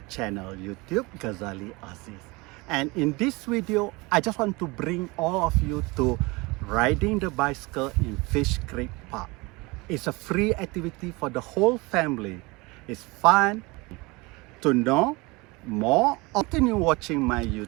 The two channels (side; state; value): left; quieter; 24.8 dB